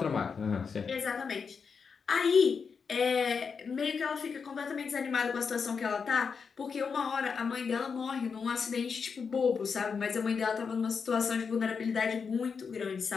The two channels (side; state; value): right; quieter; 5.7 dB